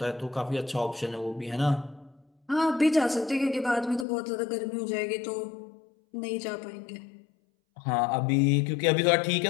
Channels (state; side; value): drops out; right; at 4.0 s